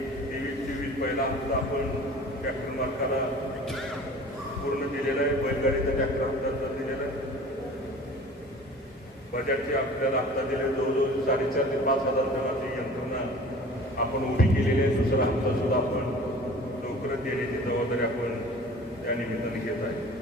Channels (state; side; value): normal; both; correlation 0.43